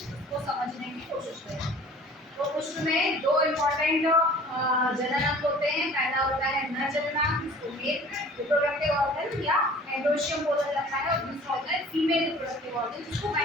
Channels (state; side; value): normal; both; correlation 0.47